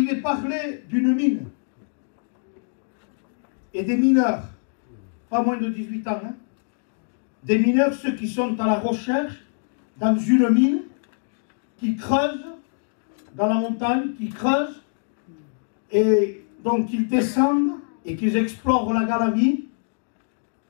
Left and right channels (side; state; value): right; silent; digital silence